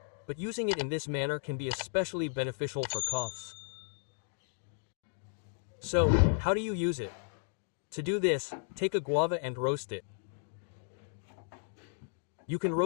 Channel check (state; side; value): silent; right; digital silence